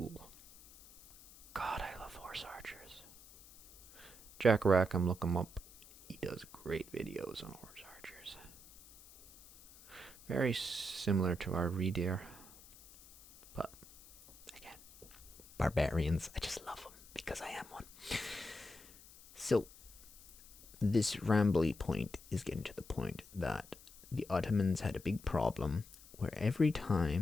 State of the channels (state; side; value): noise; left; hiss, 21 dB below the sound